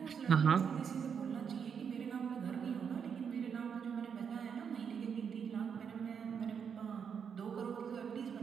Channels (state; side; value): quieter; left; 7.0 dB